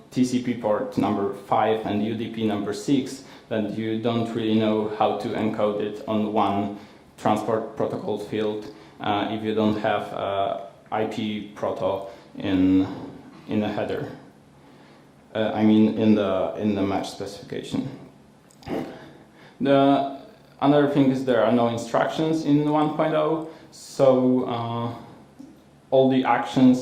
TCP port number 5 and UDP number 6, then you don't really know how to encode it on one transport protocol field if you don't have IP proto in the header. I mean in the match specification. The another thing is there are no instructions in 1.0, so all the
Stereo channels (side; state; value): both; identical; correlation 1.00